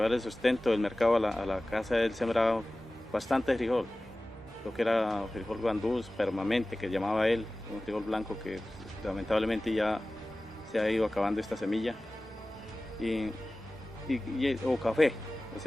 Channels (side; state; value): both; normal; correlation 0.97